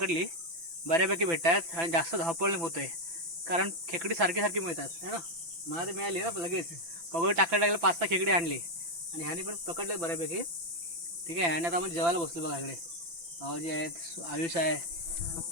बऱ्यापैकी भेटतात आणि जास्त धावपळ नाही होतंय, कारण खेकडी सारखी सारखी मिळतात है ना. मला ते मिळाली ना लगेच. पगोल टाकायला लागलं, 5-6 खेकडी आणली आणि ह्यानी पण पकडले बऱ्यापैकी. ठीक आहे. आणि आता आपण जेवायला बसलो बघा. इकडे भाऊजी आहेत, आयुष आहे.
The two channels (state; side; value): late; left; 6.0 ms